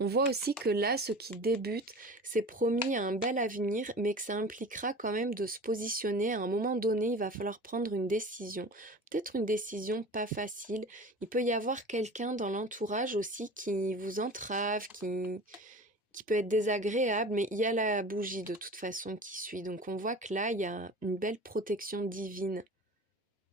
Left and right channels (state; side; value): normal; both; correlation 0.38